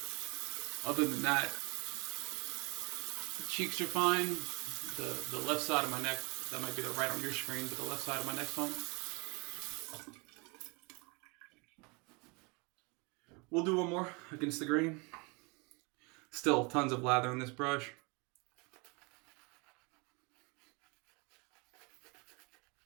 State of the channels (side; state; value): left; quieter; 29.8 dB